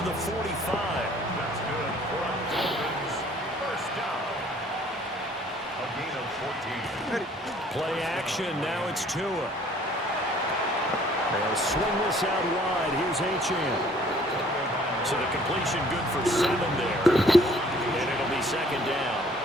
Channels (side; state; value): both; normal; correlation 0.57